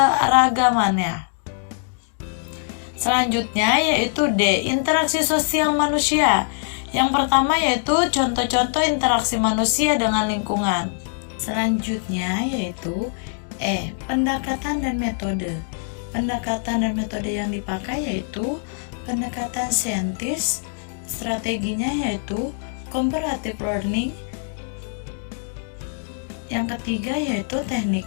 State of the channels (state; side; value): silent; right; digital silence